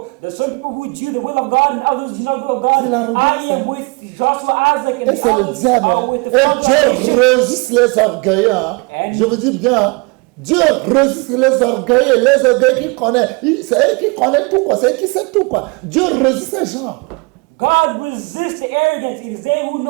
There's some people who do the will of God and others do not the will of God. C'est l'arrogance, I am with Joshua, Isaac, Et and c'est le others diable. are Hein. with the Et Dieu Father. résiste les orgueilleux. Hein. Je vous dis bien, hein. Dieu résiste les orgueilleux qui connaissent. C'est eux qui connaissent tout, quoi. C'est eux qui savent tout, quoi. Dieu résiste ces gens. God resists the arrogant. It is they who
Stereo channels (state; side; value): quieter; left; 30.0 dB